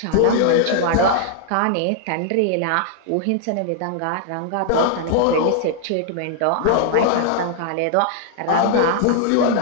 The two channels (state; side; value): different; both; correlation -0.01